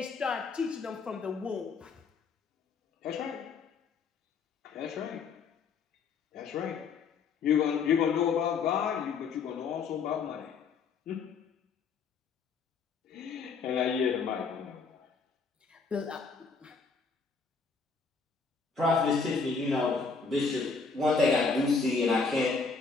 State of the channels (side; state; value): right; quieter; 4.9 dB